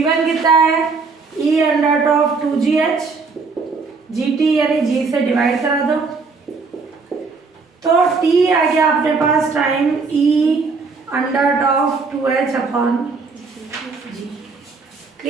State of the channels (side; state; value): left; quieter; 4.5 dB